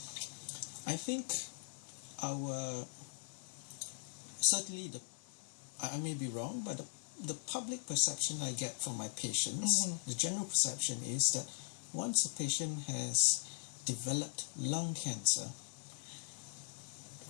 I think certainly I may be wrong, but the public perception I get from my patients, the general perception is that once a patient has developed lung cancer,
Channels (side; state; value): right; silent; digital silence